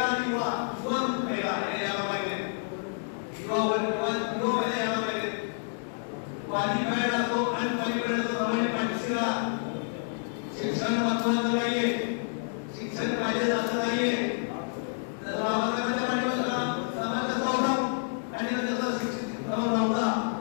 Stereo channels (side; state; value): right; silent; digital silence